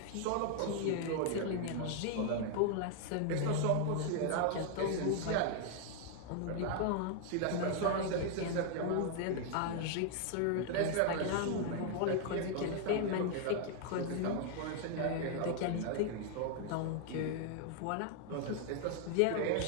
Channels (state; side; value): different; both; correlation 0.00